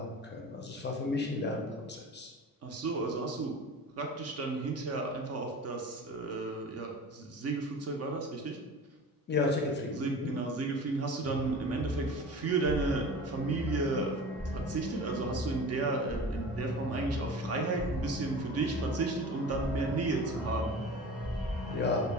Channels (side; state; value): both; normal; correlation 0.37